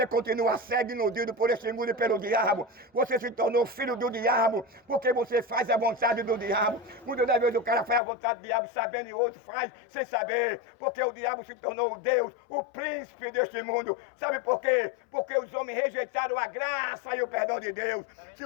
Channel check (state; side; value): drops out; right; at 8.0 s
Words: continua cego e iludido por este mundo e pelo diabo. Você se tornou filho do diabo porque você faz a vontade do diabo. Muitas das vezes o cara faz a vontade do diabo sabendo e outro faz sem saber. Porque o diabo se tornou o Deus, o príncipe deste mundo. Sabe por quê? Porque os homens rejeitaram a graça e o perdão de Deus. Se